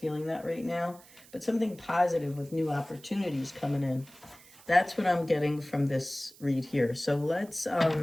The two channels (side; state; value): right; noise; hiss, 23 dB below the sound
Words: that right now. But something positive with new opportunities coming in. That's what I'm getting from this read here. So let's